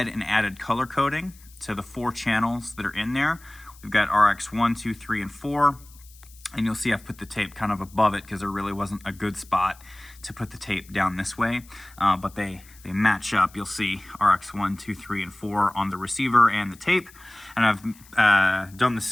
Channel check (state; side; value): noise; left; hiss, 24 dB below the sound